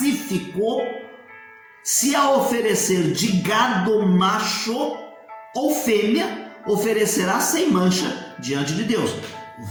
se a oferecer de gado macho ou fêmea, oferecerá sem mancha diante de Deus.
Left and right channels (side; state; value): both; identical; correlation 1.00